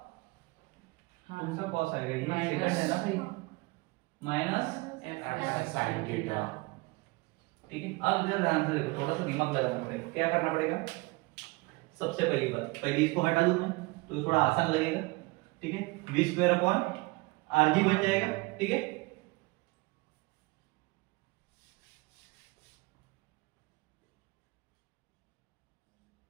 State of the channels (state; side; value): quieter; left; 24.7 dB